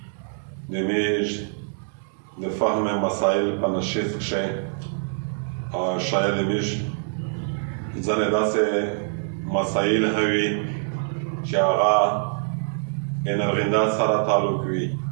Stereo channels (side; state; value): left; silent; 62 dB below the other